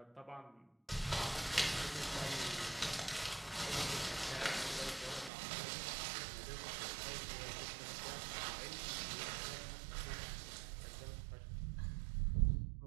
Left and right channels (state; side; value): drops out; left; at 5.3 s